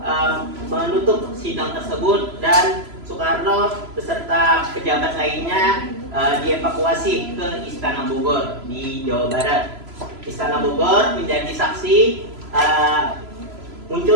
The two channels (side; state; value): left; late; 3.0 ms